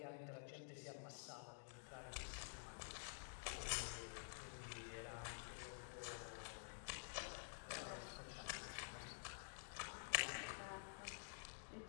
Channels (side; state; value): right; silent; digital silence